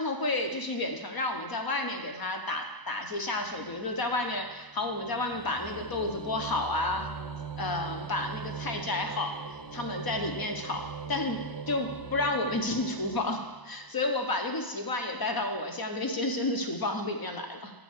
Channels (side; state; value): right; late; 1.0 ms